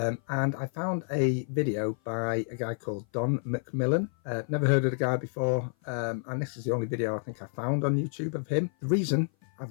I found a video by a guy called Don McMillan. Never heard of the guy before, and this is the only video I think I found on YouTube of him. The reason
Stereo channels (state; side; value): silent; right; 56 dB below the other